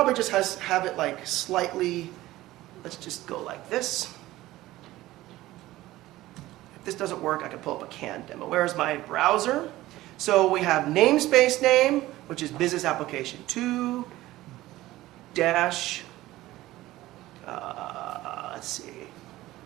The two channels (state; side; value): quieter; left; 16.7 dB